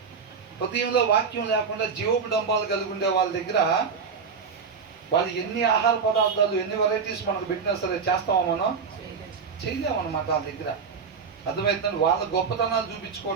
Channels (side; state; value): left; quieter; 5.8 dB